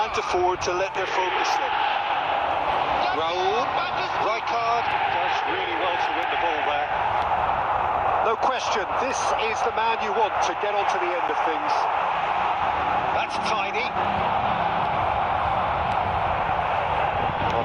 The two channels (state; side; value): identical; both; correlation 1.00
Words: afford to let their focus slip. Raul, Rijkaard does really well to win the ball there. No question, this is the man you want to get onto the end of things. That's tidy. Well,